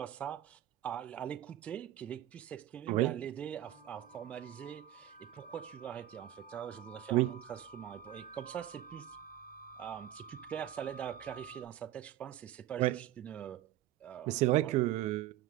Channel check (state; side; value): quieter; left; 13.2 dB